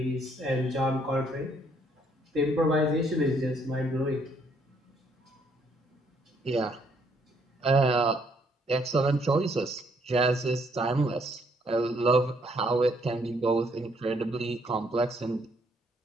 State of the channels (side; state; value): both; normal; correlation 0.69